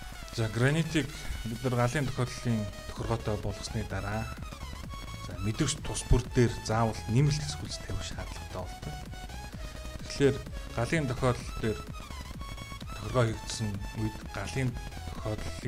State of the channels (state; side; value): identical; both; correlation 1.00